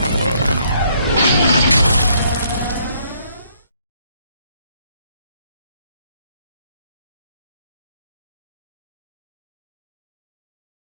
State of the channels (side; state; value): both; inverted; correlation -0.68